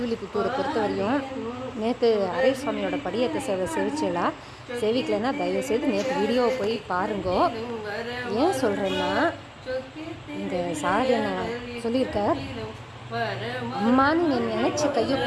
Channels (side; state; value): both; identical; correlation 1.00